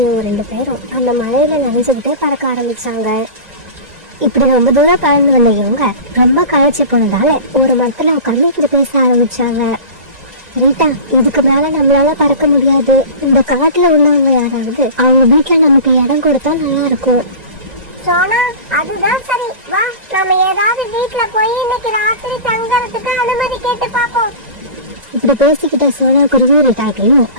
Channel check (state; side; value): late; left; 1.9 ms